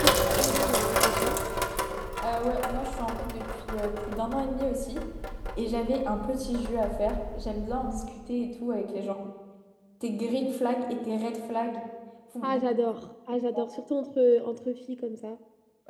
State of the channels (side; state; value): both; identical; correlation 1.00